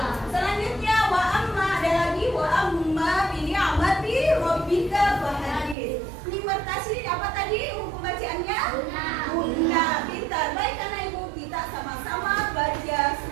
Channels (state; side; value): drops out; left; at 5.8 s